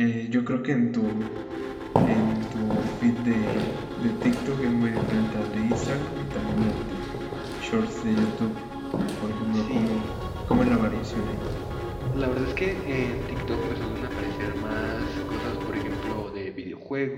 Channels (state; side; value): identical; both; correlation 1.00